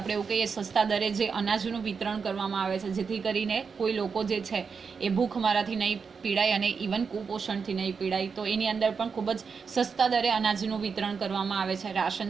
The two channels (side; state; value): left; quieter; 5.6 dB